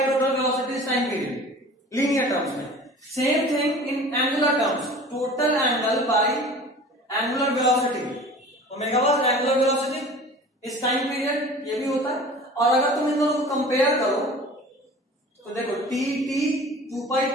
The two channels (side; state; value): both; normal; correlation 0.42